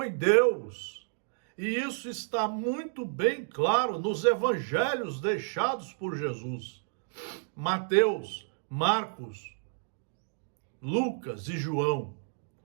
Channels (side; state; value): left; silent; digital silence